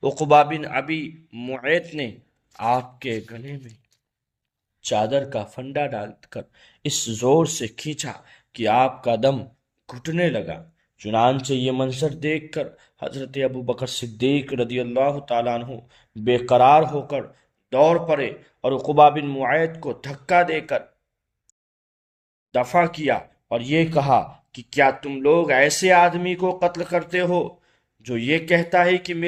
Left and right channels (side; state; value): both; identical; correlation 1.00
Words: عقبہ بن ابی معیط نے آپ کے گلے میں چادر کا پھندا ڈال کر اس زور سے کھینچا کہ آپ کا دم گھٹنے لگا۔ چنانچہ یہ منظر دیکھ کر حضرت ابو بکر صدیق رضی اللہ تعالیٰ عنہ بے قرار ہو کر دوڑ پڑے اور عقبہ بن معیط کو دھکا دے کر دفع کیا اور یہ کہا کہ کیا تم لوگ ایسے آدمی کو قتل کرتے ہو جو یہ کہتا ہے کہ